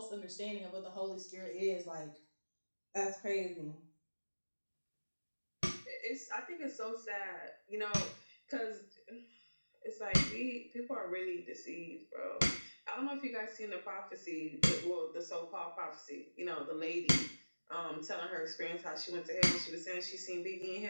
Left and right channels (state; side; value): inverted; both; correlation -1.00